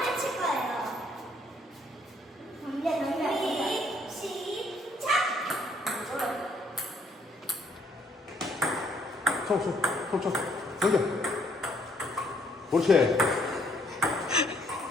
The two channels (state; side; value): normal; both; correlation 0.66